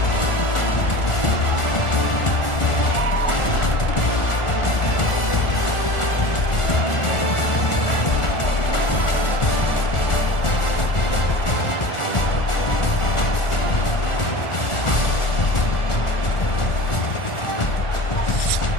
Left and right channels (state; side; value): late; right; 1.4 ms